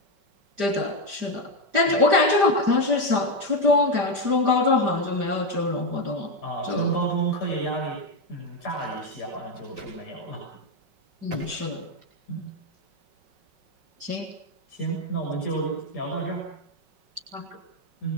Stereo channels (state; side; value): late; left; 5.0 ms